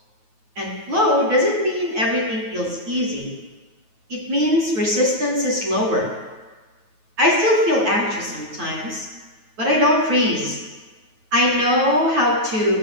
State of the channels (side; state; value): left; late; 9.3 ms